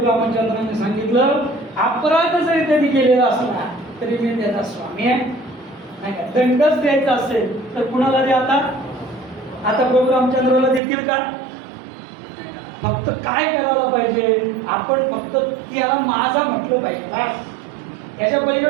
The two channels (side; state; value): left; drops out; at 10.8 s